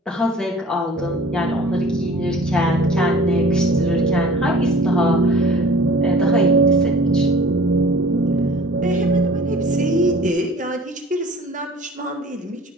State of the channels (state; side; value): normal; both; correlation 0.47